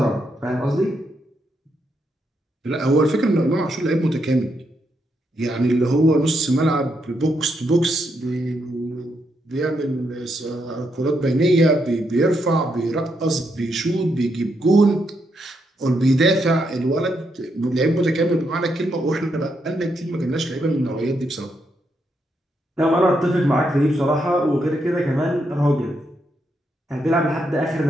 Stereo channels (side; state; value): both; normal; correlation 0.79